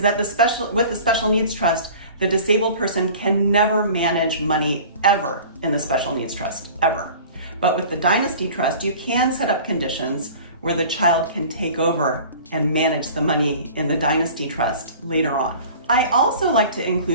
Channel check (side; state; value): both; inverted; correlation -0.43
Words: with the special needs trust, the disabled person can never manage money ever in the special needs trust, ever. But with the Dynasty trust, you can set up conditions where the child can take over and manage the money in the Dynasty trust later on. I also like to